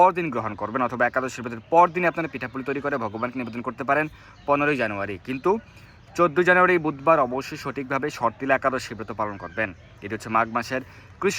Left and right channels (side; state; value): both; identical; correlation 1.00